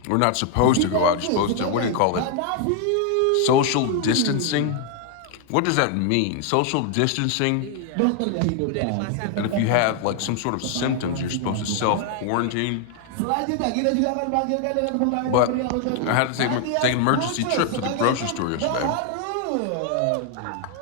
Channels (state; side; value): different; both; correlation 0.00